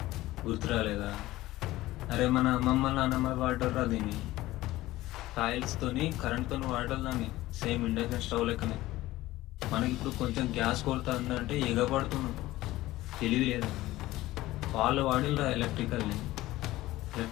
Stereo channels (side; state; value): right; quieter; 17.0 dB